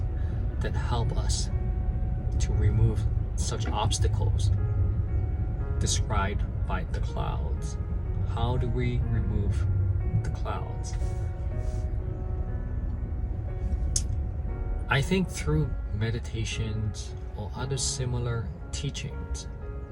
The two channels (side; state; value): both; identical; correlation 1.00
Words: that help us to remove such obstacles described by the clouds? How do we remove the clouds? I think through meditations or other similar teachings.